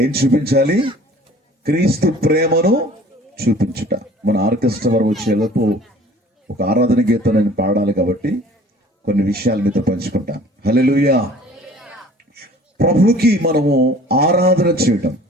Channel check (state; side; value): normal; both; correlation 0.50